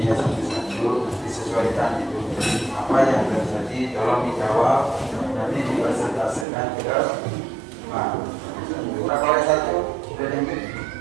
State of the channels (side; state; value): left; drops out; at 6.5 s